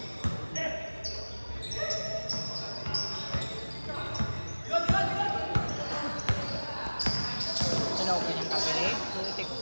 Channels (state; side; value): inverted; both; correlation -1.00